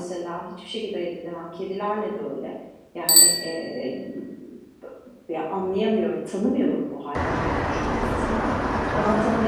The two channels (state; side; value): identical; both; correlation 1.00